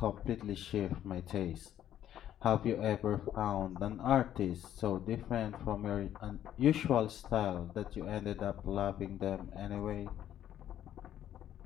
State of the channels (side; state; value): right; quieter; 11.1 dB